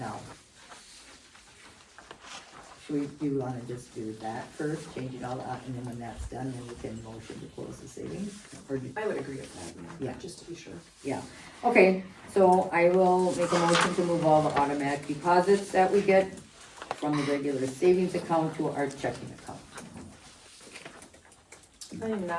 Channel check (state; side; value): identical; both; correlation 1.00